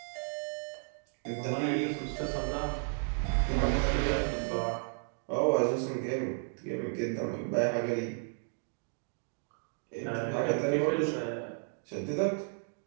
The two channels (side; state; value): left; silent; 56 dB below the other